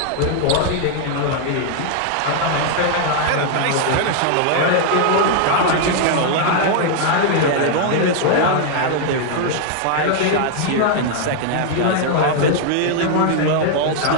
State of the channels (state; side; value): different; both; correlation 0.00